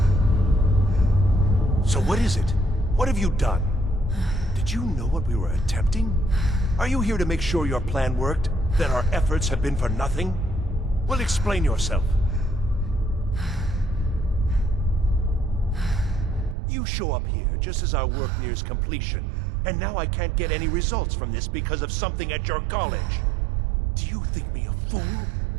So what is it? What have you done? Did you know what we were attempting? Are you here to make sure your plan worked? That our efforts have been for nothing? Well, explain yourself. You show up here just as our work nears completion, and now I can't get any results from this because of something at your college. Do you think me a fool?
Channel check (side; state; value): left; drops out; at 16.6 s